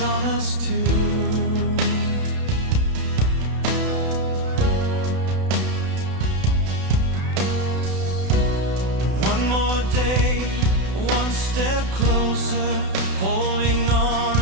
us too. One more day, one step closer, holding on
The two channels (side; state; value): left; late; 32 ms